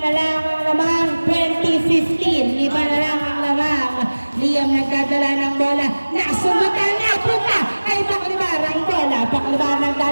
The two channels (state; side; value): inverted; both; correlation -1.00